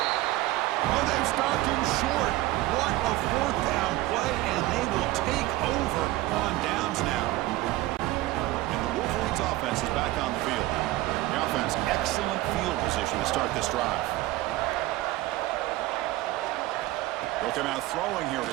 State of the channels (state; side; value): quieter; left; 17.5 dB